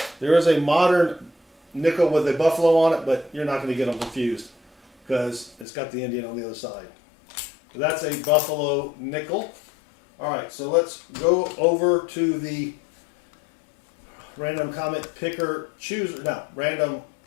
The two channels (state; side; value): drops out; right; at 5.7 s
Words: There is a modern nickel with a buffalo on it, but you're not going to get them confused because it's got the Indian on the other side. So that's a buffalo nickel. All right, so let's go over to the random comment picker chooser. No, random